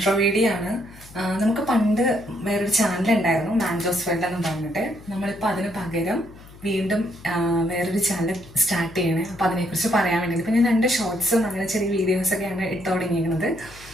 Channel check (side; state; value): left; noise; hum, 21 dB below the sound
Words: വീഡിയോ ആണ്. നമുക്ക് പണ്ട് വേറൊരു ചാനൽ ഉണ്ടായിരുന്നു, മാൻജോസ് വേൾഡ് എന്ന് പറഞ്ഞിട്ട്. നമ്മളിപ്പോൾ അതിന് പകരം വീണ്ടും വേറൊരു ചാനൽ സ്റ്റാർട്ട് ചെയ്യണേ. അപ്പോൾ അതിനെക്കുറിച്ച് പറയാൻ വേണ്ടി ഇപ്പം ഞാൻ 2 ഷോർട്സും അങ്ങനെ ചെറിയ വീഡിയോസൊക്കെയാണ് ഇട്ട് തുടങ്ങിയിരിക്കുന്നത്.